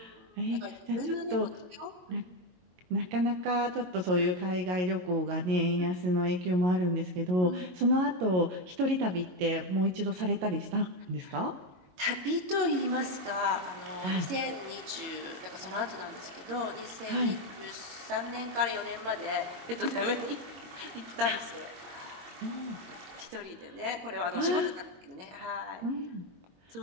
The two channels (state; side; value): late; left; 22 ms